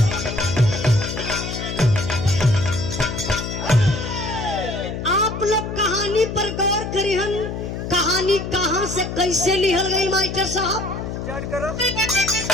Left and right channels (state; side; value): noise; left; hum, 6 dB below the sound